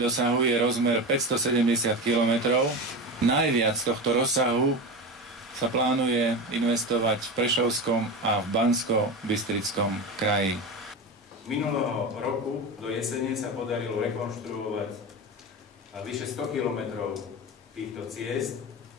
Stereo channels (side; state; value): both; normal; correlation 0.23